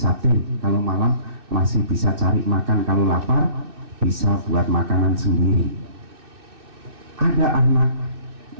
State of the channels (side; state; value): left; late; 2.6 ms